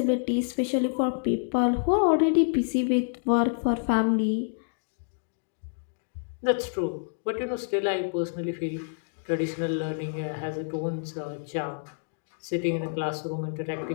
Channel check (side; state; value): right; silent; digital silence